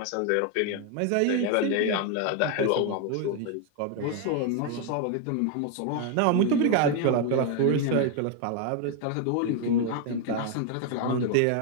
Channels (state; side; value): different; both; correlation 0.01